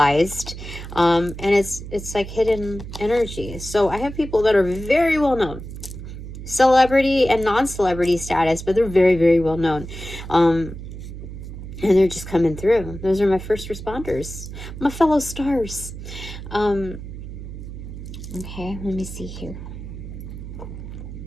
and it's like hidden energy. So I have people that are very well known, celebrity and non-celebrity status, but they're very, very well known, and they're just coming through. Those are my first responders, my fellow stars. Okay, let me see here.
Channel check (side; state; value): right; noise; hum, 10 dB below the sound